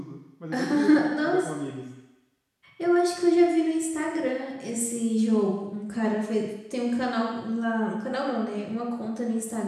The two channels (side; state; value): both; identical; correlation 1.00